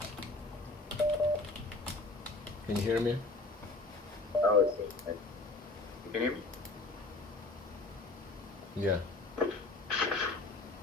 Can you hear me? Oh, it's you can hear me? Yeah.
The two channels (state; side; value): quieter; right; 3.2 dB